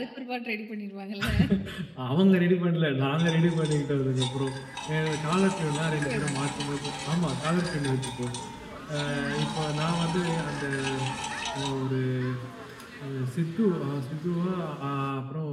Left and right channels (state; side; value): identical; both; correlation 1.00